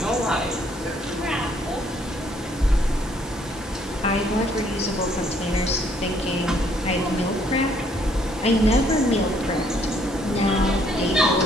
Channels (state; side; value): normal; both; correlation 0.66